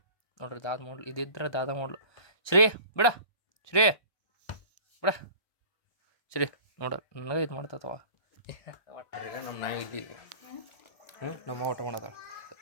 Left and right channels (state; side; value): late; right; 1.2 ms